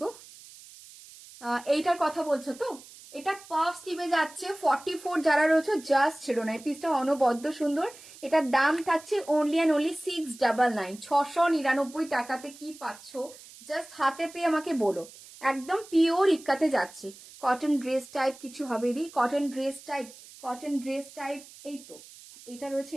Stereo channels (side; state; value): right; noise; hiss, 19 dB below the sound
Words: গো? এইটার কথা বলছো তো? এটা পাফ স্লিভে যাচ্ছে। 44 যারা রয়েছে জাস্ট ছিল না, এই পিসটা অনবদ্য সুন্দর। এটার দাম থাকছে অনলি অ্যান্ড অনলি 699, 699 টাকাতে কি পাচ্ছ জাস্ট হাতে পেয়ে আমাকে বলো। একদম পিওর ইক্কাতে যাচ্ছে। কটন ড্রেস টাইপ কিছু হবে দি, cotton dress type, cotton dress type. এই তো এটা রয়েছে,